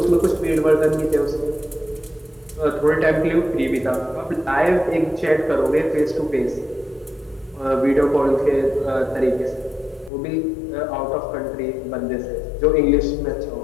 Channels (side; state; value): right; drops out; at 10.1 s